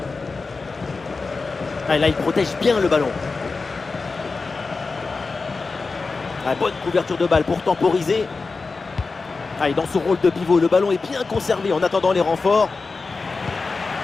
Ah, là, il protège bien le ballon. Ah, bonne couverture de balle pour temporiser. Ah, et dans son rôle de pivot, le ballon est bien conservé en attendant les renforts.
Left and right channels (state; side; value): quieter; right; 4.1 dB